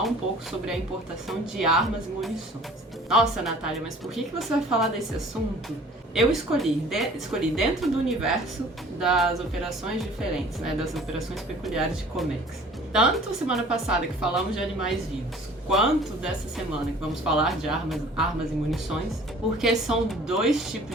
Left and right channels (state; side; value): normal; both; correlation 0.49